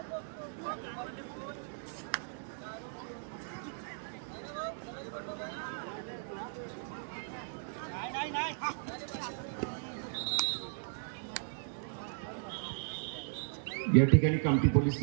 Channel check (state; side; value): silent; left; digital silence